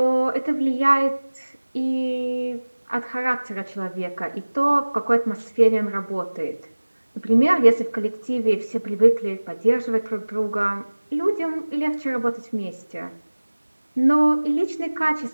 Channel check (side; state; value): both; inverted; correlation -1.00